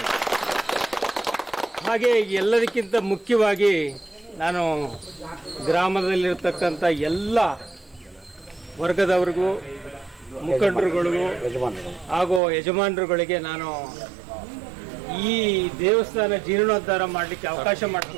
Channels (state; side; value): drops out; left; at 12.4 s